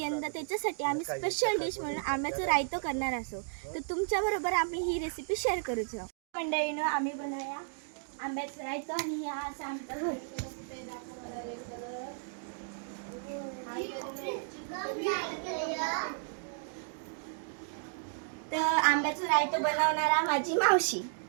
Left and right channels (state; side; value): silent; left; digital silence